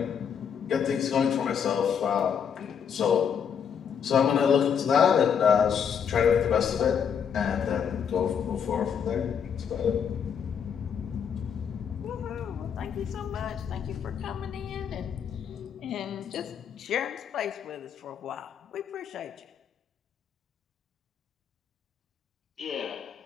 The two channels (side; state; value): right; quieter; 7.5 dB